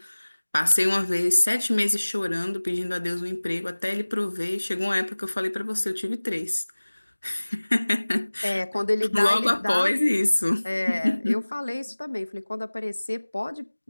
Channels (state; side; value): inverted; both; correlation -1.00